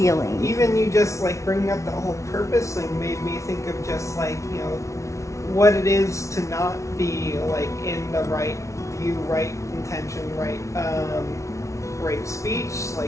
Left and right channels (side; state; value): right; late; 0.14 ms